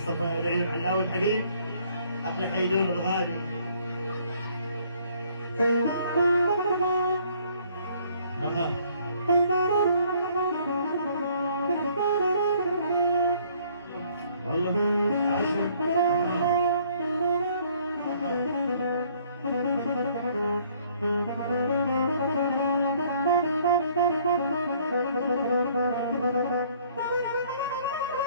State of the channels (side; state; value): both; inverted; correlation -0.61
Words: لعيون علاوي الحبيب، أحلى حيدور الغالي. والله عشر